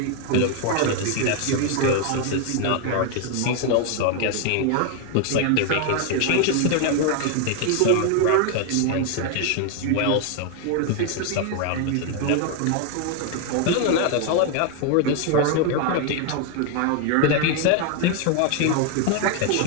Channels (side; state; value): both; different; correlation 0.01